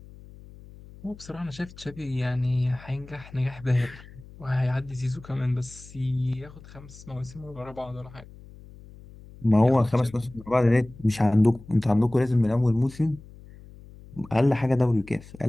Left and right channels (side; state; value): left; noise; hum, 20 dB below the sound